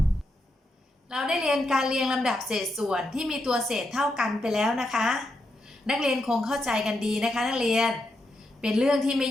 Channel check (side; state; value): both; normal; correlation 0.83